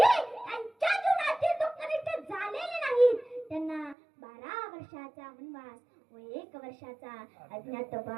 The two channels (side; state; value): left; drops out; at 4.0 s